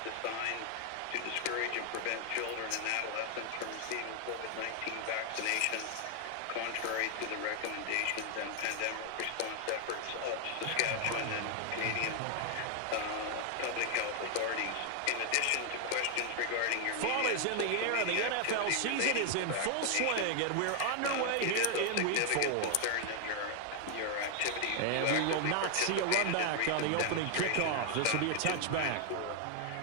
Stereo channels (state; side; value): different; both; correlation 0.00